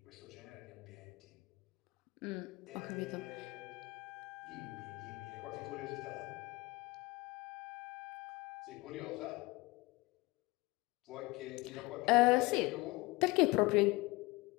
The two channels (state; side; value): quieter; right; 22.6 dB